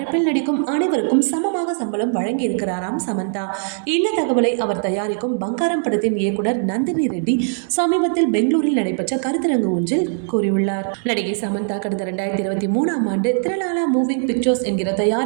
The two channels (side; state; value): left; silent; digital silence